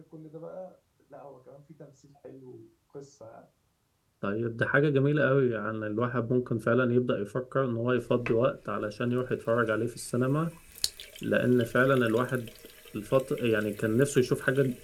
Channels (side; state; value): both; identical; correlation 1.00